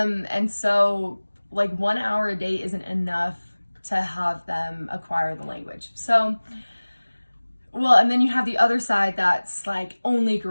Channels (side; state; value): both; inverted; correlation -1.00